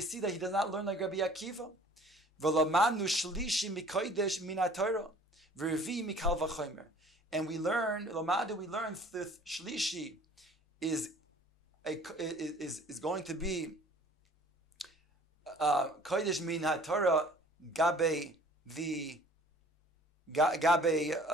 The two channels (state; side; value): normal; both; correlation 0.52